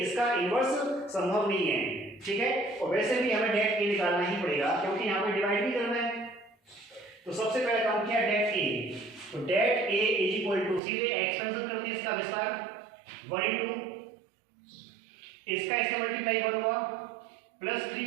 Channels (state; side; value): drops out; left; at 10.8 s